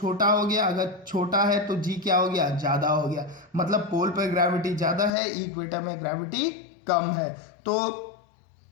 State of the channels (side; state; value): right; drops out; at 5.1 s